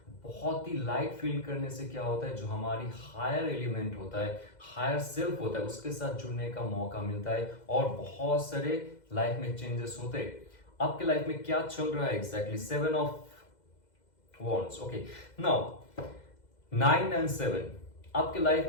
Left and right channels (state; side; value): late; right; 2.0 ms